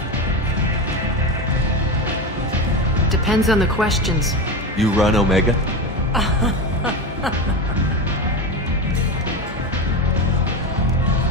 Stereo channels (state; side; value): normal; both; correlation 0.20